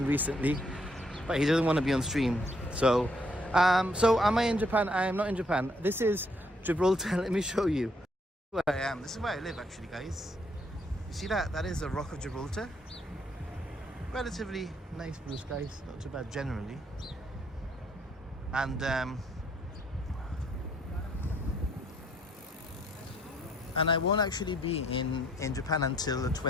recently, but he doesn't want to be on stream. So am I in Japan? I am not in Japan. This is Gibraltar. Let me show you where I am. This is where I live actually, guys. see that? That is the Rock of Gibraltar. Relatively nice blue skies, not too bad generally. And I won't actually be in Japan until the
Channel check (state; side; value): normal; both; correlation 0.68